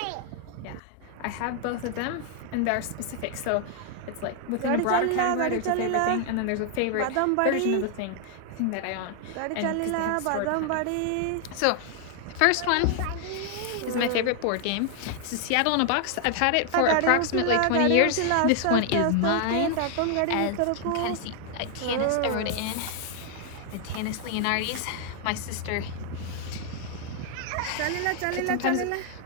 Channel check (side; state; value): both; different; correlation 0.00